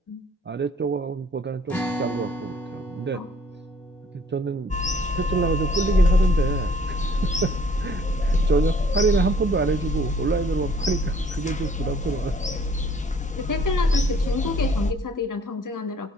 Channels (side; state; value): both; normal; correlation 0.59